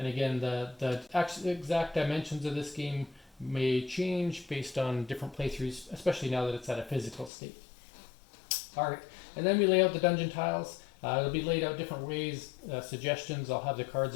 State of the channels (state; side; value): drops out; right; at 7.3 s